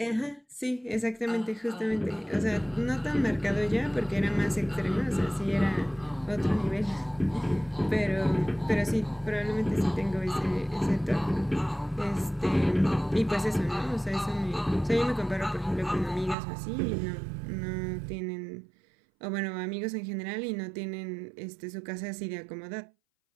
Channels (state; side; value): drops out; left; at 16.4 s